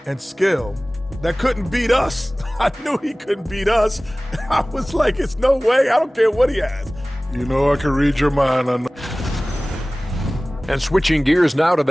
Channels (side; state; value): both; normal; correlation 0.98